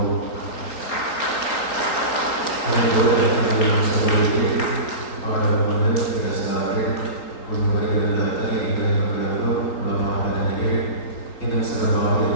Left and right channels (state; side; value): late; right; 4.5 ms